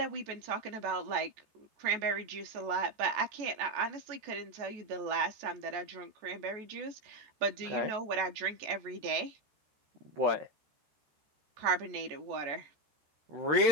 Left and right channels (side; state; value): left; late; 14 ms